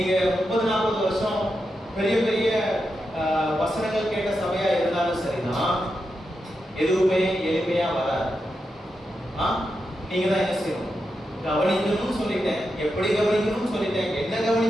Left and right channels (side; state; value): both; normal; correlation 0.87